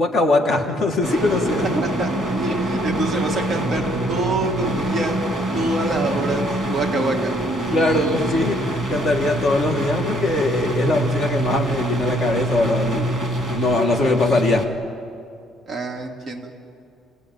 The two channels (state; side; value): normal; both; correlation 0.66